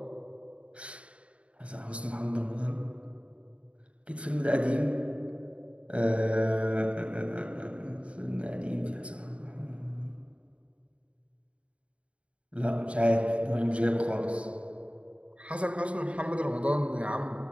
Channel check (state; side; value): late; left; 0.061 ms